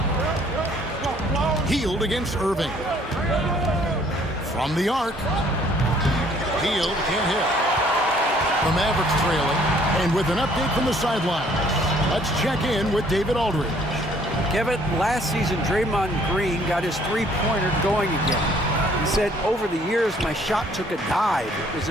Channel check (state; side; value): normal; both; correlation 0.60